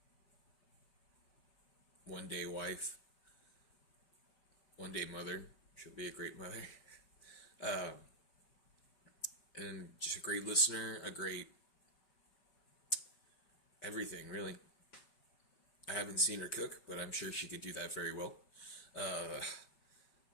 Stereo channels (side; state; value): right; late; 5.3 ms